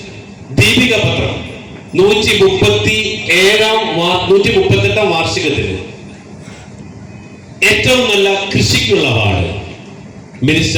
ദീപിക പത്രം 138 വാർഷികത്തിന് ഏറ്റവും നല്ല കൃഷിക്കുള്ള അവാർഡ്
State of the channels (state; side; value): identical; both; correlation 1.00